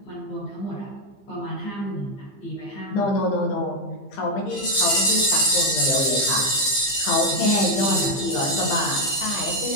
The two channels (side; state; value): right; late; 15 ms